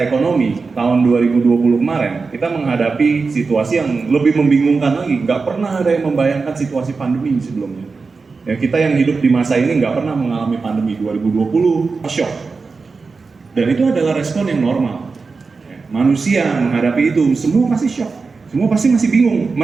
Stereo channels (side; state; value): left; quieter; 4.4 dB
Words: ekonomi, tahun 2020 kemarin, kita menghadapi situasi yang lebih membingungkan lagi. Nggak pernah ada yang membayangkan situasi pandemi sebelumnya. Ya, kita yang hidup di masa ini nggak pernah mengalami pandemi. 2020, shock. Dan itu adalah respon yang normal. Ya, manusia menghadapi itu, semua pasti shock. Semua pasti masih bingung,